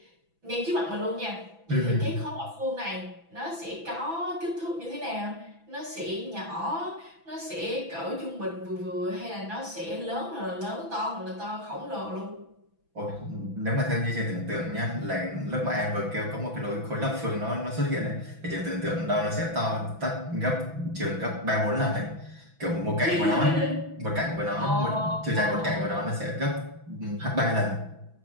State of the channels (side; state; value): left; late; 6.0 ms